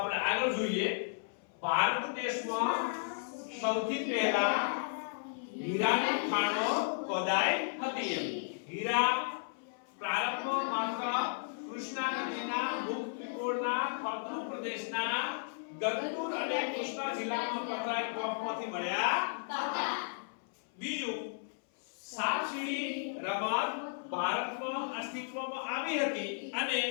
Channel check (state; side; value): silent; right; 55 dB below the other